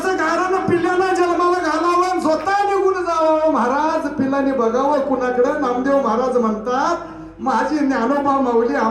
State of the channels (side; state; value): both; identical; correlation 1.00